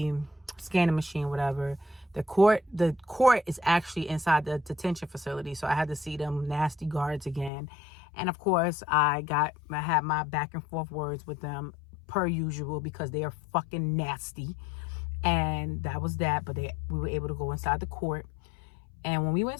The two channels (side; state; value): right; drops out; at 7.5 s